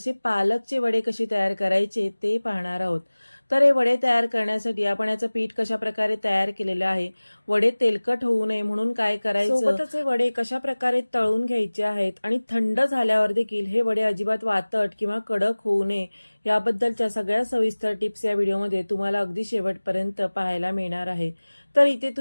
पालकचे वडे कसे तयार करायचे ते पाहणार आहोत. तर हे वडे तयार करण्यासाठी आपण याचं पीठ कशा प्रकारे तयार केलेलं आहे, वडे तेलकट होऊ नये म्हणून काय करायचं, सोबतच हे वडे कशा प्रकारे तळून घ्यायचे आहेत आणि थंड झाल्यावर देखील हे वडे अजिबात वातट किंवा कडक होऊ नये याबद्दलच्या सगळ्या सविस्तर टिप्स या व्हिडिओमध्ये तुम्हाला अगदी शेवटपर्यंत पाहायला मिळणार आहे. तर इथे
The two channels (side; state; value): both; inverted; correlation -1.00